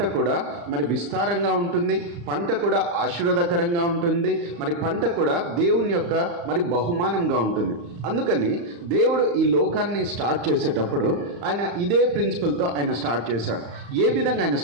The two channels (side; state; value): left; late; 35 ms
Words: కూడా మరి విస్తారంగా ఉంటుంది, పంట కూడా ఆశీర్వాదకరంగా ఉంటుంది, మరి పంట కూడా దేవుని యొక్క మరి బహుమానంగా ఉంటుంది. అందుకని దేవుడు ఈ లోకాన్ని స్టార్ట్ చేసేటప్పుడు ఆయన ఇదే ప్రిన్సిపల్తో ఆయన స్టార్ట్ చేశాడు. ఏ విధంగా ఆయన